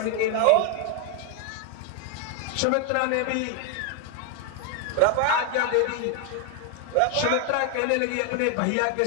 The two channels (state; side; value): different; both; correlation 0.01